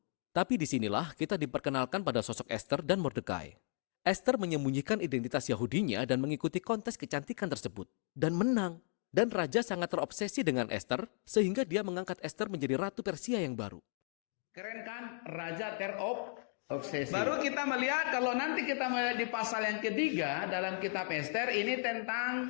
Tapi disinilah kita diperkenalkan pada sosok Esther dan Mordekai. Esther menyembunyikan identitas Yahudinya dan mengikuti kontes kecantikan tersebut. Dan menang. Dan Raja sangat terobsesi dengan Esther sehingga dia mengangkat Esther menjadi Ratu Persia yang baru. Keren kan? Raja obsesi. Baru kita melihat kalau nanti kita melihat di pasal yang ketiga dalam kitab Esther ini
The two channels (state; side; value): silent; right; 54 dB below the other